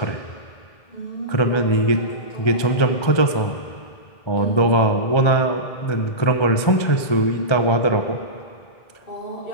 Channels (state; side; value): late; right; 1.3 ms